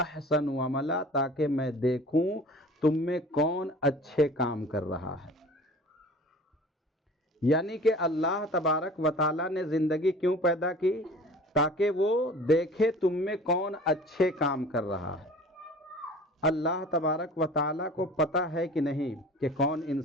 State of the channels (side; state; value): both; normal; correlation 0.43